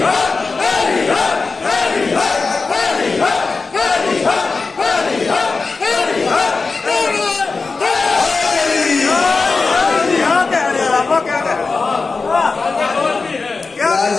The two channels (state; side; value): quieter; right; 4.2 dB